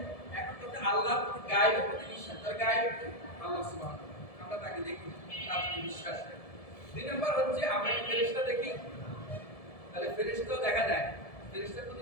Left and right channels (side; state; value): right; late; 1.7 ms